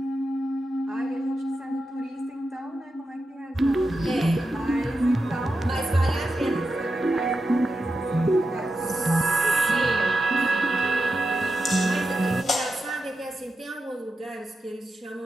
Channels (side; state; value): both; normal; correlation 0.89